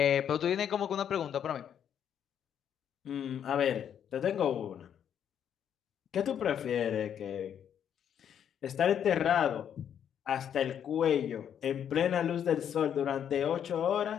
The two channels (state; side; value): quieter; right; 9.0 dB